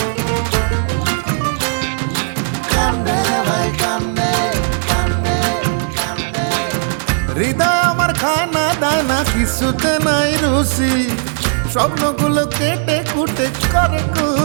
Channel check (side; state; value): left; silent; digital silence